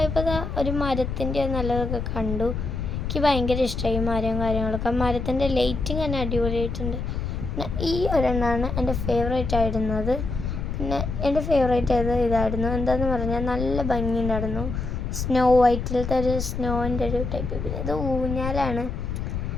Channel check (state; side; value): noise; left; rumble, 4 dB below the sound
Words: ഒരു മരത്തിൻ്റെ നല്ലതൊക്കെ കണ്ടു. എനിക്ക് ഭയങ്കര ഇഷ്ടമായി മരവും കാര്യങ്ങളൊക്കെ. മരത്തിൻ്റെ ലൈറ്റിങ് തന്നെ അടിപൊളിയായിട്ടുണ്ട്. പിന്നെ ഈ ഒരെണ്ണമാണ് എൻ്റെ ഫേവറേറ്റ് ആയിരുന്നത്. പിന്നെ എൻ്റെ ഫേവറേറ്റ് ഇതായിരുന്നു. എന്താണെന്ന് പറഞ്ഞാൽ നല്ല ഭംഗിയുണ്ടായിരുന്നു. സ്നോ വൈറ്റിലത്തെ ഒരു സ്നോൻ്റെ ഒരു ടൈപ്പ്. പിന്നെ ഇത് ഊഞ്ഞാലാണ്.